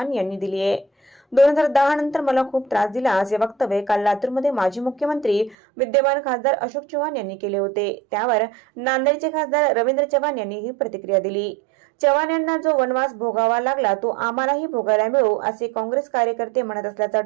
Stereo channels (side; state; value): left; drops out; at 5.6 s